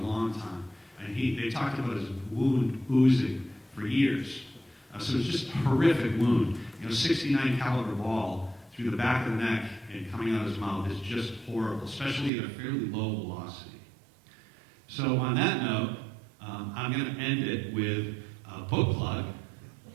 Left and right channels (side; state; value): left; drops out; at 12.3 s